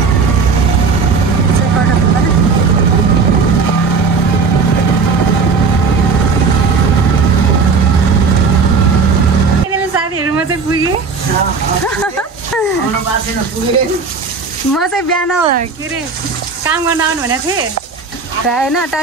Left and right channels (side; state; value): left; quieter; 4.8 dB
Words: म चाहिँ बिहान के अरे काम गर्न आउनु भनेको थिएँ होइन